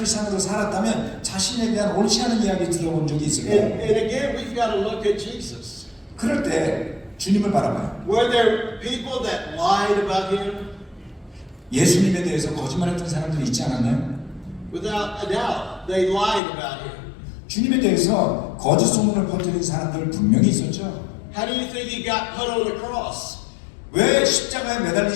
살았다면 자신에 대한 옳지 않은 이야기 들어본 적이 있을 거예요. And again, we've got to look at Jesus. 그럴 때 주님을 바라봐요. Were there people that lied about him? 예수님에 대해서 거짓말했던 사람들이 있지 않았나요? Without a doubt, they lied about him. 주님에 대해서 거짓 소문을 퍼뜨린 사람들 분명히 있었죠. How do you think he got put on the cross? 왜 십자가에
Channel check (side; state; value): right; drops out; at 16.4 s